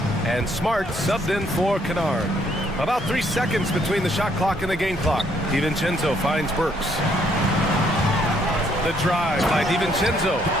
And Smart subbed in for Kennard. About 3 seconds between the shot clock and the game clock. DiVincenzo finds Burks. The drive by DiVincenzo.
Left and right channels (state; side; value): noise; right; hum, 18 dB below the sound